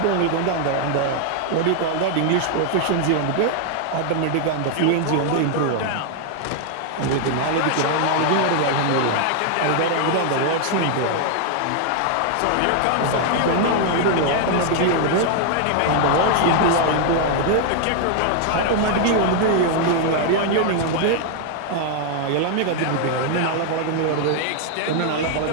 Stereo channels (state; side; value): different; both; correlation 0.00